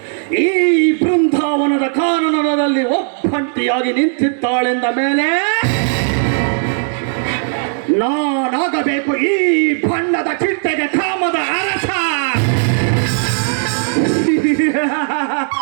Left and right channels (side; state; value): left; silent; 59 dB below the other